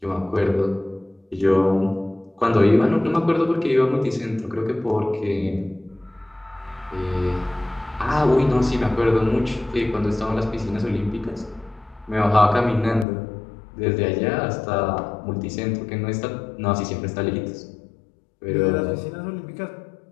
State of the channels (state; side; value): drops out; right; at 13.1 s